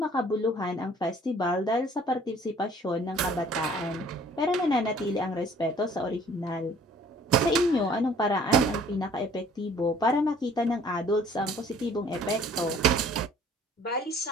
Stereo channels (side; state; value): both; normal; correlation 0.54